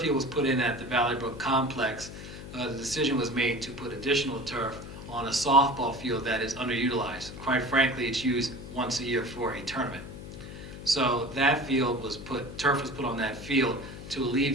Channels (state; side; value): noise; left; hum, 12 dB below the sound